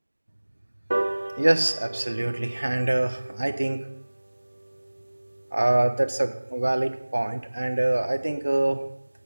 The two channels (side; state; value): both; inverted; correlation -1.00